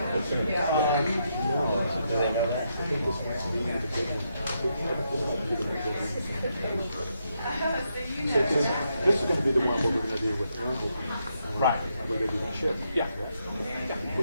is going to be the one we're going to do with Aaron. Right. We're going to do the chip. Yeah.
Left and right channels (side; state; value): both; inverted; correlation -0.80